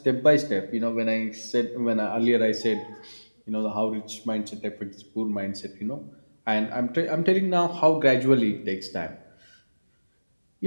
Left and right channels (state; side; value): inverted; both; correlation -1.00